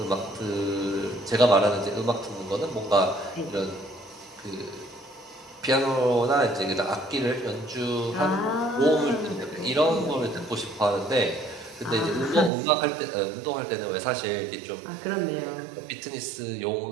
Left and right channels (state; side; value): drops out; left; at 12.5 s